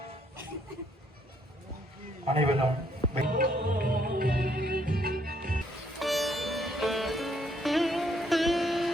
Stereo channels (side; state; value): both; normal; correlation 0.70